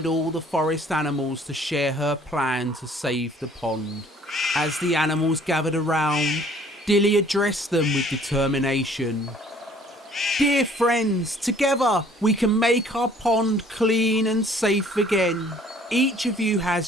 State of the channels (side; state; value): both; normal; correlation 0.56